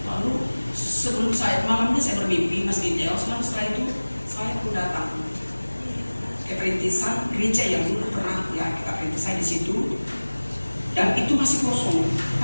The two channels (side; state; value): both; inverted; correlation -1.00